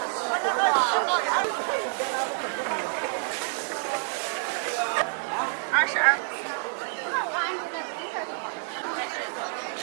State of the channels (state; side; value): silent; left; 59 dB below the other